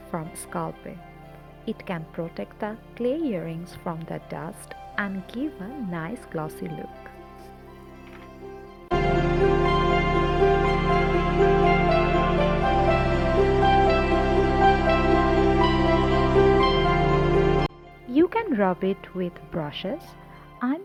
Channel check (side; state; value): both; identical; correlation 1.00